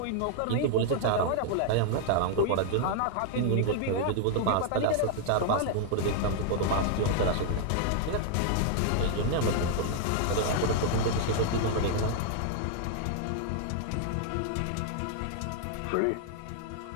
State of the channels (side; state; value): both; different; correlation 0.00